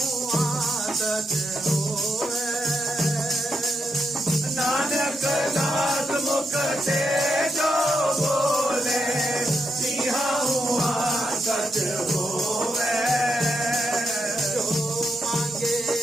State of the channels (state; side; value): normal; both; correlation 0.82